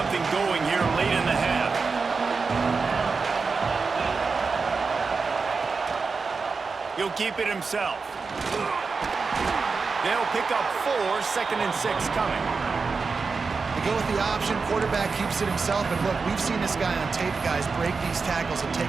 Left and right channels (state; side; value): quieter; left; 4.7 dB